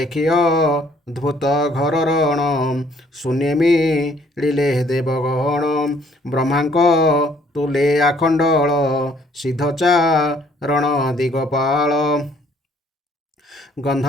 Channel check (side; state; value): both; normal; correlation 0.62